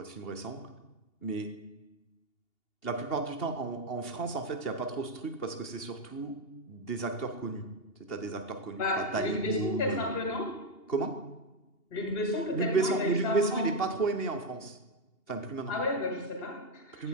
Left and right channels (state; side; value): late; right; 2.8 ms